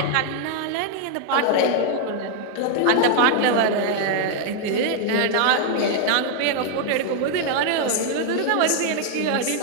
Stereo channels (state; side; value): different; both; correlation 0.00